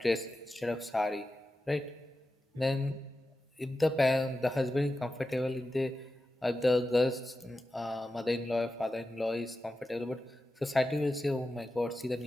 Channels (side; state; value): both; normal; correlation 0.92